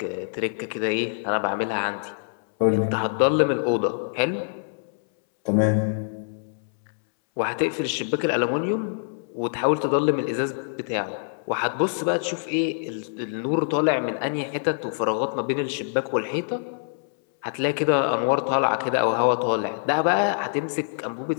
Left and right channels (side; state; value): right; silent; 62 dB below the other